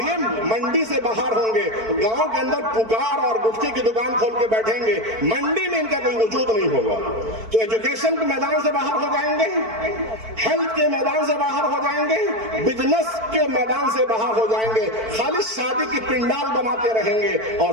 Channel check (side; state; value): left; late; 4.5 ms